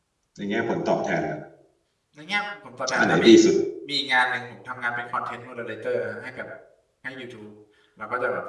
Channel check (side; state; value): both; identical; correlation 1.00